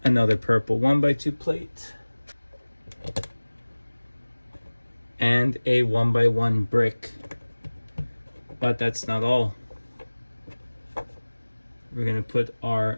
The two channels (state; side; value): inverted; both; correlation -1.00